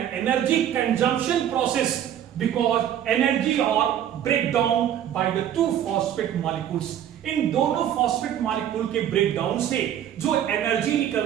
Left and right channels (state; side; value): quieter; left; 10.4 dB